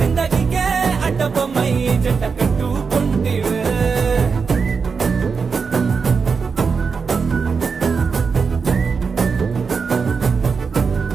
అడ్డ బొమ్మై జంట కట్టుకుంటివే.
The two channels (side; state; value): left; quieter; 5.4 dB